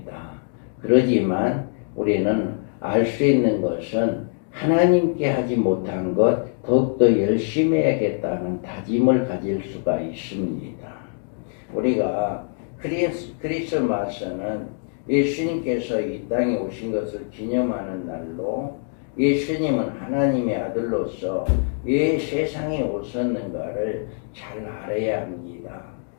그러지만 우리는 알 수 있는 것은 하나님께 하지 못한 것 더욱더 열심히 해야겠다는 다짐을 가질 수가 있습니다. 우리가 크리스마스는 예수님께서 이 땅에 오신 것을 기념하는 날로, 예수님은 하나님의 아들로서 왜 세상에 오셨는가를 잘 알아야 합니다.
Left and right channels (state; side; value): silent; right; 60 dB below the other